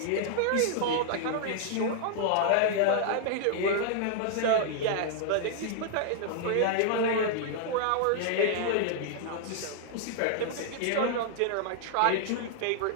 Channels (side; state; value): both; different; correlation 0.00